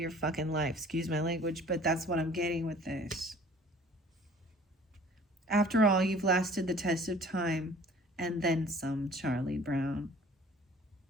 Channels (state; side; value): normal; both; correlation 0.51